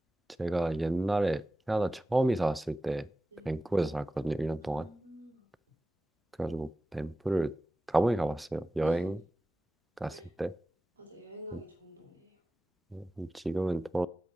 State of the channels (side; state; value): both; normal; correlation 0.96